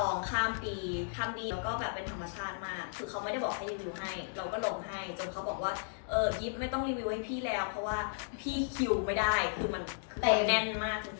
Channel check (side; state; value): right; silent; digital silence